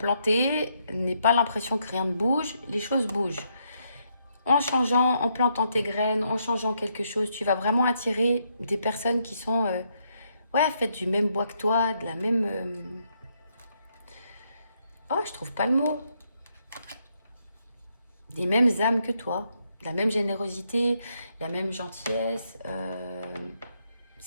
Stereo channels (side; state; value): both; inverted; correlation -0.77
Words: n'aie pas l'impression que rien ne bouge, les choses bougent. En changeant, en plantant tes graines, en changeant quelque chose, tu vas vraiment attirer des personnes qui sont, ouais, faites du même bois que toi, de la même... Oh, je trouve pas le mot. Des mêmes âmes que toi, la même générosité, la même gentillesse.